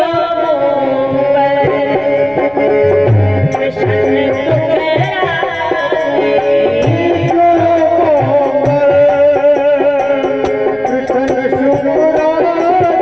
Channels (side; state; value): right; noise; rumble, 28 dB below the sound